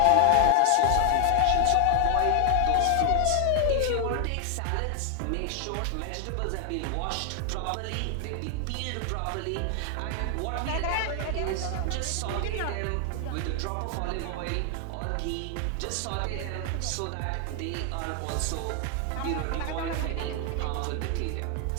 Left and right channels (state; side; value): different; both; correlation 0.00